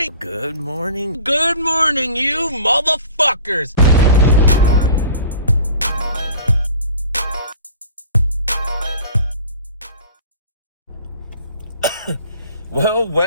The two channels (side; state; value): both; inverted; correlation -0.45